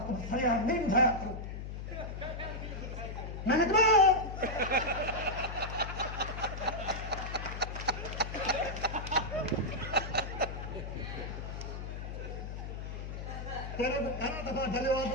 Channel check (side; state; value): left; noise; hum, 7 dB below the sound